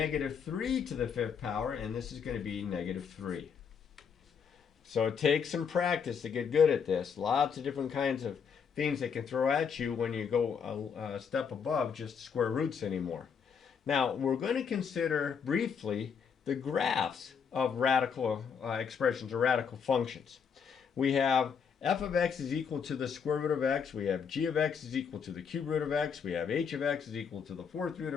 3 to the fifth power, and this is going to be negative 3. So it takes some practice to get good at this. Lots of different kinds of things they can throw at you when you go a step above just square roots anymore. Now, we're going to consider briefly the graphs of radical expressions or radical functions. We have f of x is equal to the square root of x. We have g of x is equal to the cube root of x. We have h of x is equal to the fourth root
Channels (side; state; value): right; quieter; 6.7 dB